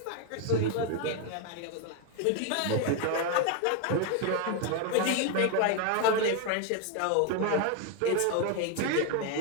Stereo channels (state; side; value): different; both; correlation 0.01